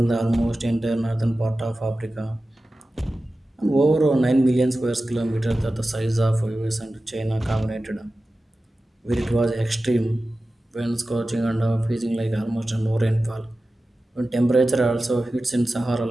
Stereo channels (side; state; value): both; normal; correlation 0.95